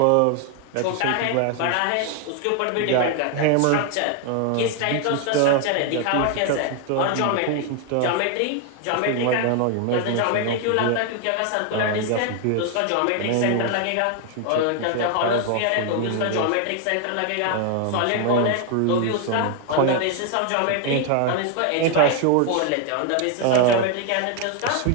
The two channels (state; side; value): different; both; correlation 0.01